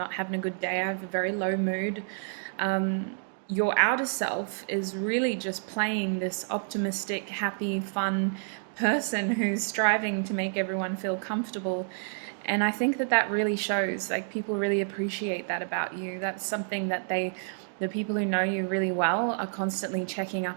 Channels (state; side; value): silent; left; digital silence